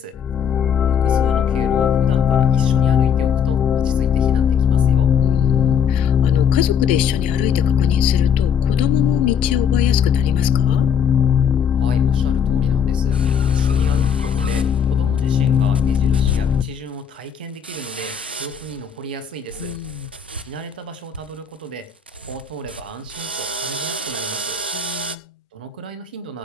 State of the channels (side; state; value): right; quieter; 7.4 dB